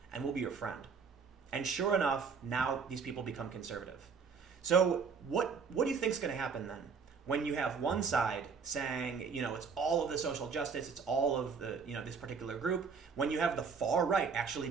and we'll be your friend. And sure enough, now these people become conservative. So what do you think is going to happen then? When you have one side saying, it's all of the social justice, it's all of the, this particular group. When you have the far right actually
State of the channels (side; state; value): left; quieter; 5.7 dB